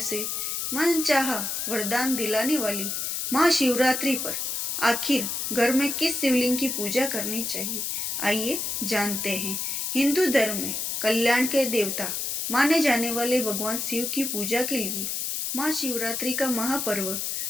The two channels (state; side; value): noise; left; hiss, 2 dB below the sound